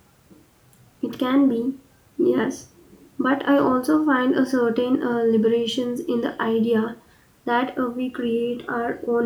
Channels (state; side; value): identical; both; correlation 1.00